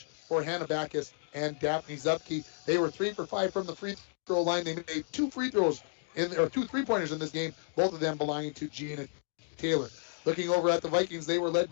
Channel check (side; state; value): right; silent; digital silence